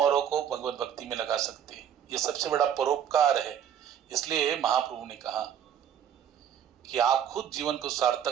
को भगवत भक्ति में लगा सकते हैं। ये सबसे बड़ा परोपकार है। इसलिए महाप्रभु ने कहा कि आप खुद जीवन को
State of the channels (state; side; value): quieter; left; 9.2 dB